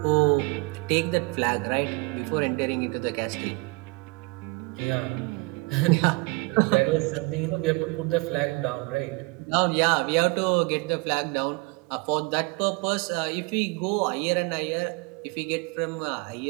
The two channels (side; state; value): left; quieter; 27.3 dB